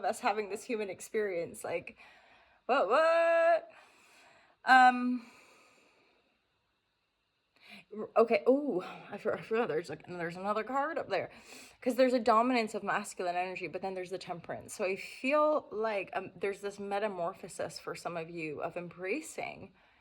us having this human experience. Like, what? Okay. I forgot. There's another card up there, because there's a dominance of masculine energy, but then there's the temperance. So I feel like there's this metamorphosis for some of you of embracing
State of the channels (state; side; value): identical; both; correlation 1.00